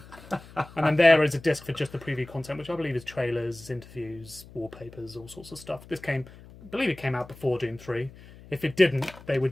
And then there is a disc for just the preview content, which I believe is trailers, interviews, wallpapers, all sorts of stuff. I believe it came out before Doom 3. If it didn't, it was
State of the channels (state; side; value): noise; left; hum, 20 dB below the sound